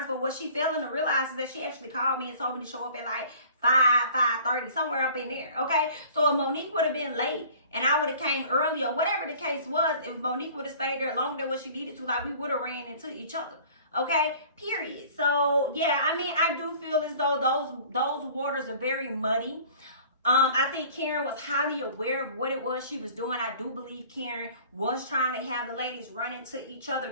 But what she failing to realize is that she actually called me and told me to show up at like 5:30, somewhere up in there. Okay, so if Monique would have been late and I would have came early or whatever the case was, if Monique would have stayed there longer than what she needed to, like we would have ran into each other. Okay, period. So yeah, I mean, I do feel as though those waters are very muddy. I think Karen was highly aware of what it was she was doing. I do believe Karen was trying to have the ladies run into each other,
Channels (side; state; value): both; inverted; correlation -0.48